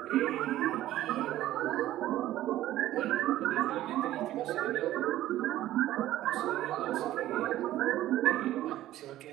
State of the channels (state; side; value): quieter; left; 14.2 dB